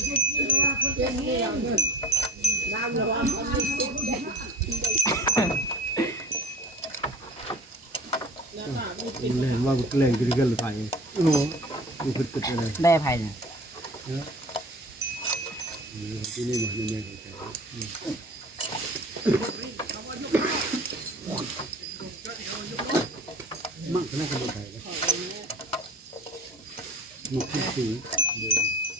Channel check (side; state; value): both; normal; correlation 0.40